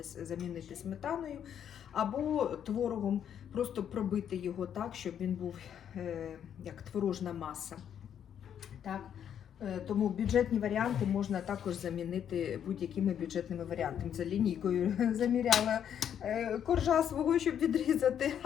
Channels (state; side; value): quieter; right; 9.1 dB